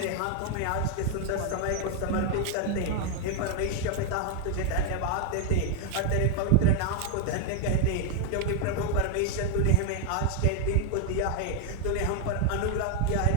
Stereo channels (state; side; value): different; both; correlation 0.00